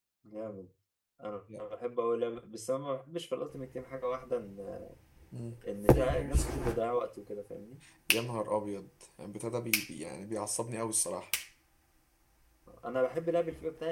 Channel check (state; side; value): identical; both; correlation 1.00